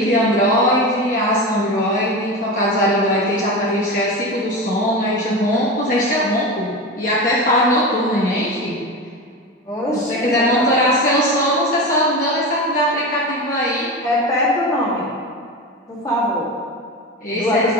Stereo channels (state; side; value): normal; both; correlation 0.24